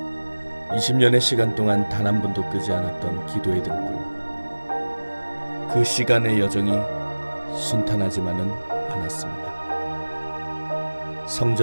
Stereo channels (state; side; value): inverted; both; correlation -1.00